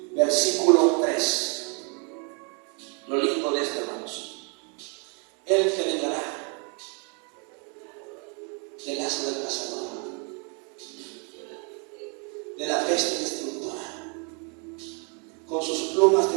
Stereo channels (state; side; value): quieter; left; 36.7 dB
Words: Versículo 3. Lo lindo de esto, hermanos. Él te librará del lazo del cazador, de la peste destructora. Con sus plumas te